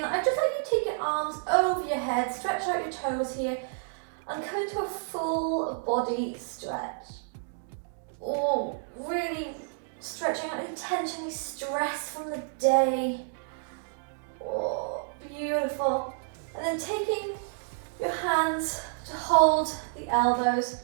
I'd just like you to take your arms over your head, stretch out your toes here, and come into a full body stretch. Oh, really stretching out any tension, any stress from the day. Oh, beautiful. And then taking your hands to hold the elbows.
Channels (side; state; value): left; silent; digital silence